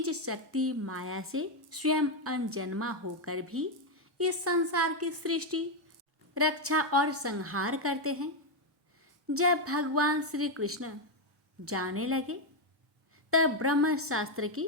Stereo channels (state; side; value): normal; both; correlation 0.03